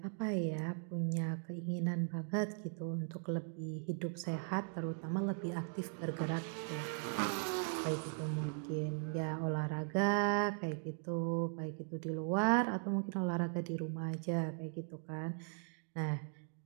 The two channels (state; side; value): silent; left; 52 dB below the other